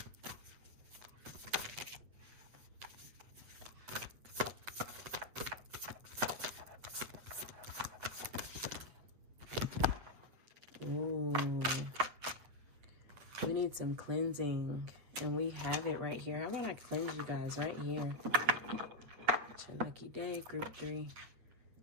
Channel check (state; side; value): late; left; 8.8 ms